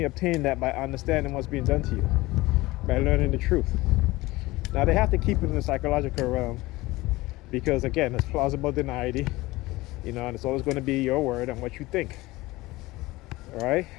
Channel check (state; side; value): quieter; right; 19.9 dB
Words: obtain that by understanding what's being done to you, by learning the truth. Now, they have to keep it in the psychological realm because, again, it's plausible deniability, you know, and it's always going to be your word and what you think. All right?